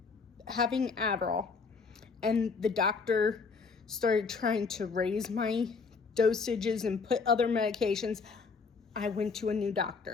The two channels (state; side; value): quieter; right; 4.9 dB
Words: having Adderall, and the doctor started trying to raise my dosages and put other medications. I went to a new